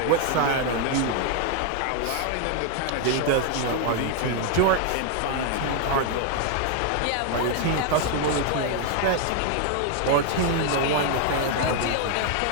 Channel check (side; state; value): both; different; correlation 0.01